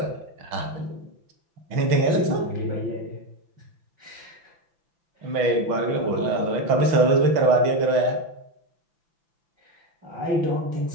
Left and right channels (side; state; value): left; late; 5.9 ms